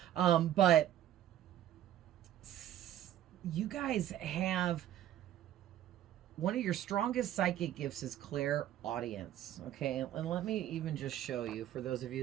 But you guys have one of your strongest psychic gifts is clairaudience. Okay, and let me even just show you for those of you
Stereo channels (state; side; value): quieter; left; 12.0 dB